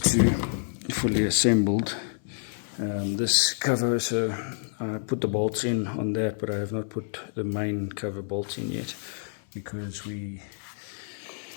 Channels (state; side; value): silent; right; 59 dB below the other